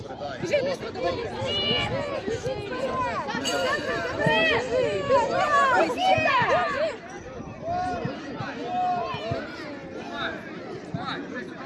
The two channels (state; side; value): identical; both; correlation 1.00